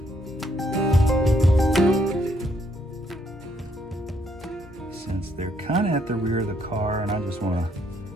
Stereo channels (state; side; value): normal; both; correlation 0.71